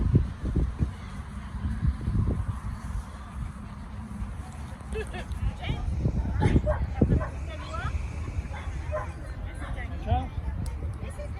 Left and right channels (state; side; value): identical; both; correlation 1.00